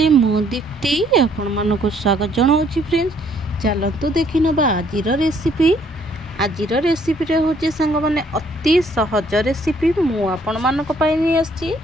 मो दीप्ति आपण मानक स्वागत जनाऊँगी। फ्रेंड्स चलतु देखि नबा आजिर रेसिपी रे होचे सांग माने अति सहज रेसिपी मु आपण मानक पई नि आछि।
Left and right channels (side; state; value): both; normal; correlation 0.64